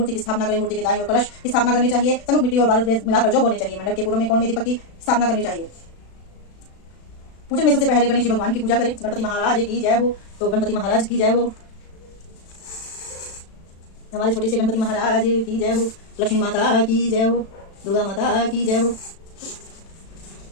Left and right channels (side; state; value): right; late; 36 ms